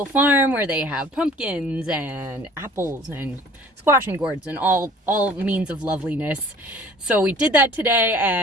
farm where they have pumpkins and apples and squashing gourds and all means of loveliness. So we did that today,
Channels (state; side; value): normal; both; correlation 0.50